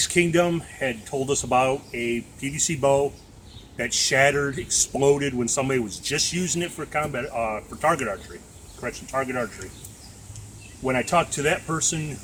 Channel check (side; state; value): both; identical; correlation 1.00